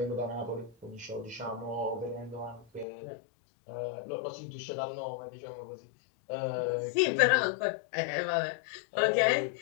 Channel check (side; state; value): right; drops out; at 2.9 s